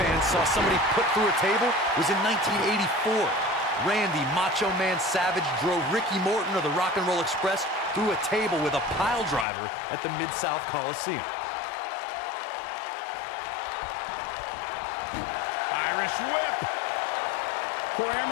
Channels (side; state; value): right; drops out; at 9.5 s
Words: saw somebody put through a table was in 1984. Randy Macho Man Savage drove Ricky Morton of the Rock and Roll Express through a table with a pile driver at the Mid-South Coliseum. Irish whip. Corey, I